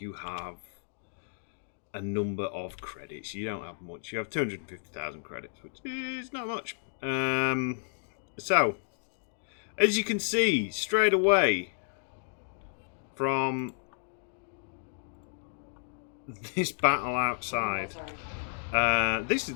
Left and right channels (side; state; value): right; silent; digital silence